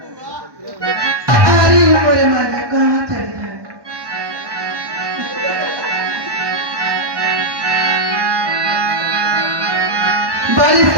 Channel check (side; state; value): left; late; 1.1 ms